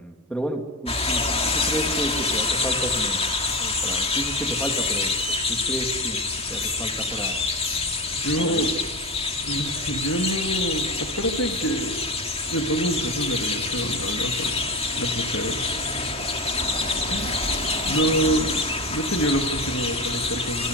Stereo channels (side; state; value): both; normal; correlation 0.22